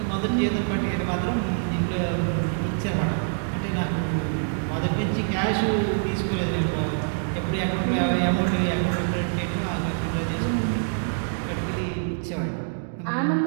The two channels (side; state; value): left; silent; digital silence